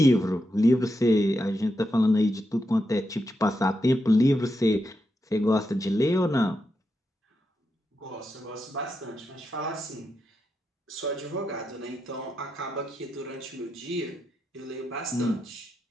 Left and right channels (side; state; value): both; normal; correlation 0.85